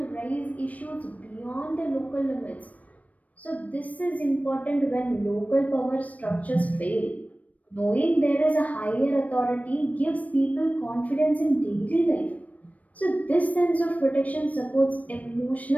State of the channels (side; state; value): right; late; 0.070 ms